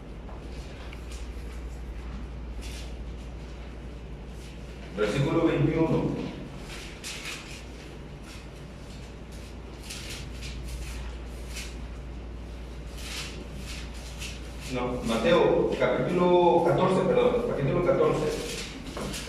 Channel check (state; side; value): identical; both; correlation 1.00